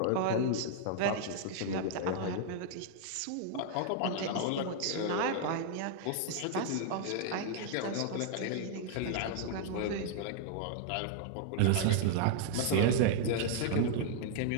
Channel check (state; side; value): different; both; correlation 0.00